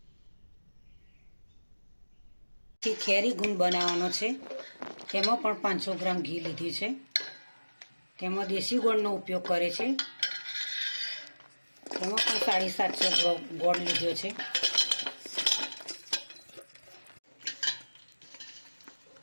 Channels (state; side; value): inverted; both; correlation -1.00